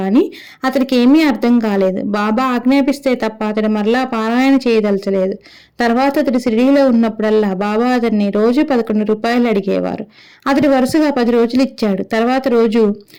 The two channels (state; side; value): identical; both; correlation 1.00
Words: అతడికి ఏమీ అర్థం కాలేదు. బాబా ఆజ్ఞాపిస్తే తప్ప అతడు మరలా పారాయణ చేయదలచలేదు. తర్వాత అతడు షిరిడీలో ఉన్నప్పుడల్లా బాబా అతన్ని రోజు 11 రూపాయలు అడిగేవారు. అతడు వరుసగా 10 రోజులు ఇచ్చాడు. తర్వాత రోజు,